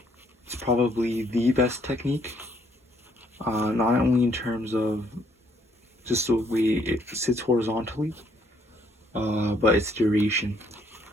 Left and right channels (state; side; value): normal; both; correlation 0.68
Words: It's probably the best technique, not only in terms of just the way it sits horizontally, but its duration.